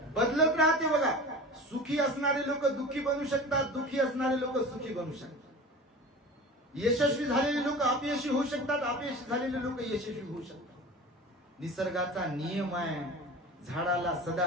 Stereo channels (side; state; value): both; normal; correlation 0.35